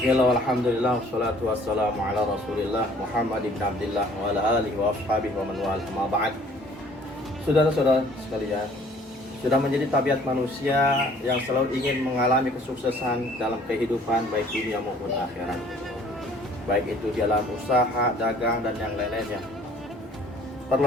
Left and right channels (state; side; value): normal; both; correlation 0.55